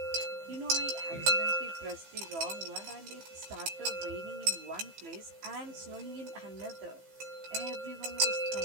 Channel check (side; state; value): left; late; 15 ms